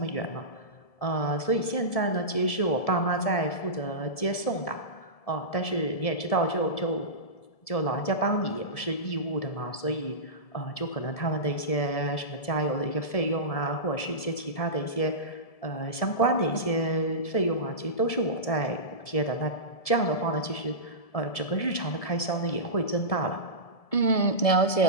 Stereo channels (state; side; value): late; right; 1.7 ms